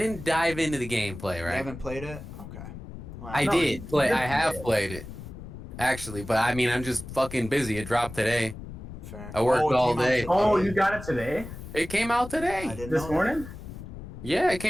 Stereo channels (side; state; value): left; noise; rumble, 12 dB below the sound